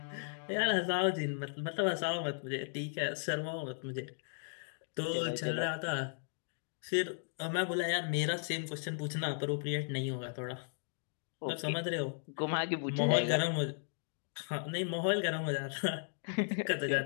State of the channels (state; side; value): silent; right; digital silence